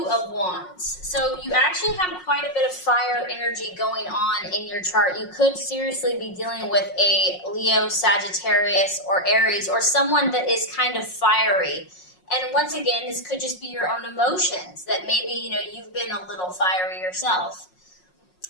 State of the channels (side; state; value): right; late; 5.5 ms